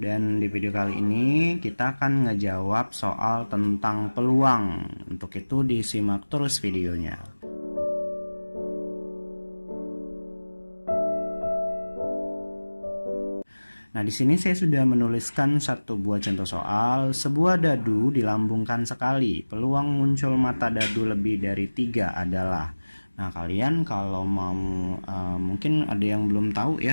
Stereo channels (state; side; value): inverted; both; correlation -1.00